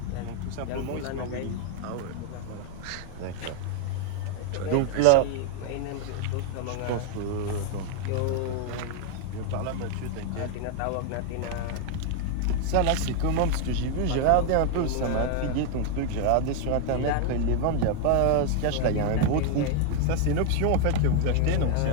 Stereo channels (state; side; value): different; both; correlation 0.00